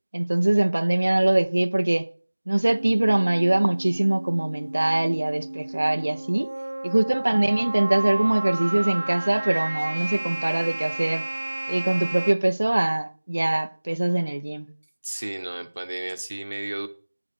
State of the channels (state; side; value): inverted; both; correlation -1.00